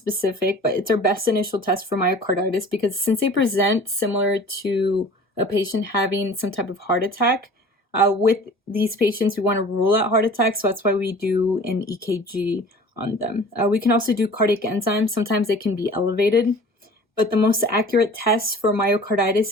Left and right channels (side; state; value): both; normal; correlation 0.44